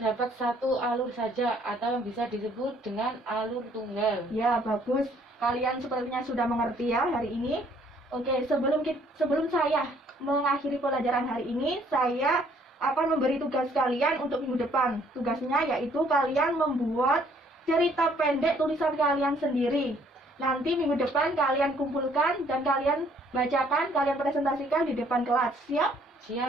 satu alur saja atau yang bisa disebut dengan alur tunggal. Ya, bagus. Kalian sepertinya sudah mengerti ya hari ini. Oke, sebelum saya mengakhiri pelajaran hari ini, saya akan memberi tugas kalian untuk minggu depan. Tugasnya yaitu kalian membuat cerita pendek tulisan kalian sendiri. Nanti minggu depan kalian kumpulkan dan kalian bacakan, kalian presentasikan di depan kelas. Siap?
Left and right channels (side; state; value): both; normal; correlation 0.63